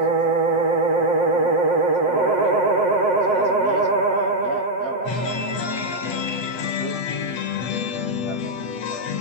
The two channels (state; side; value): late; right; 7.6 ms